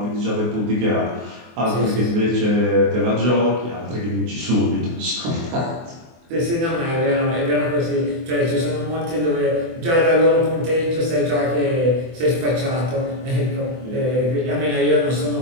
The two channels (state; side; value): late; left; 24 ms